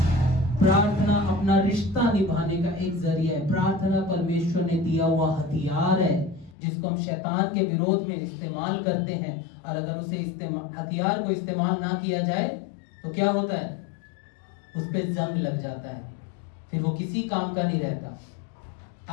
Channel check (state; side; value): drops out; right; at 6.6 s